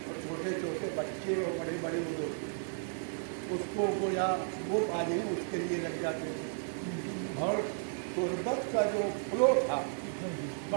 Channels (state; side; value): silent; left; digital silence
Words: اور چھوٹے چھوٹے بچے اور بڑے بڑے لوگ اس کو گویا وہ پانے اس کے لیے لگ جاتے تھے، اور قربت کا جو فلو تھا